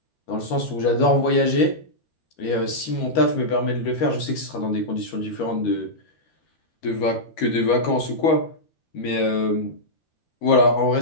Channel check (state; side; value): late; right; 13 ms